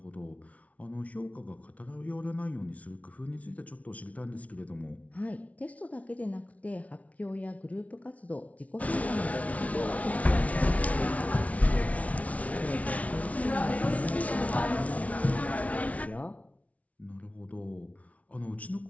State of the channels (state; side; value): late; right; 0.067 ms